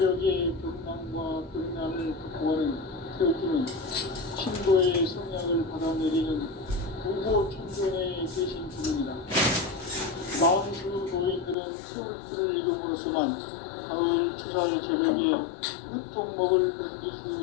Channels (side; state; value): right; drops out; at 11.6 s